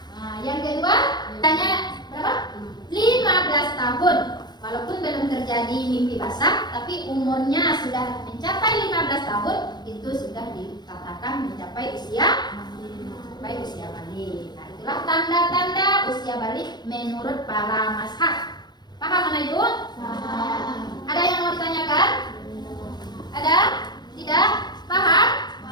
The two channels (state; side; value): late; right; 0.21 ms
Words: Nah, yang kedua, tanya berapa? 15 tahun. Walaupun belum terjadi mimpi basah, tapi umurnya sudah mencapai 15 tahun, itu sudah dikatakan mencapai usia balik. Nah, itulah tanda-tanda usia balik menurut para mazhab. Paham anak ibu? Ada yang mau ditanyakan? Ada? Tidak? Paham?